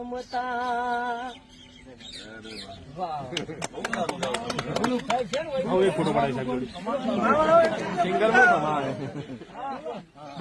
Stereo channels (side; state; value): both; identical; correlation 1.00